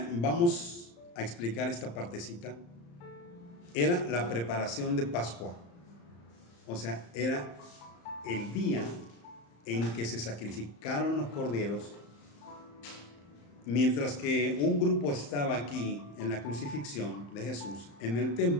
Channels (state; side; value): late; right; 35 ms